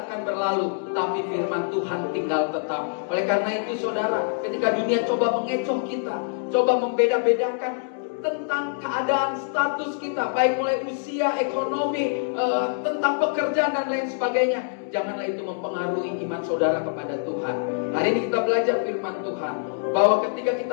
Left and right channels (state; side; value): silent; right; 62 dB below the other